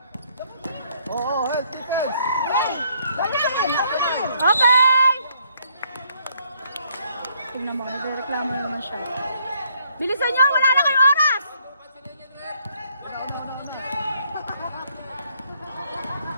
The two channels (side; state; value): both; inverted; correlation -0.68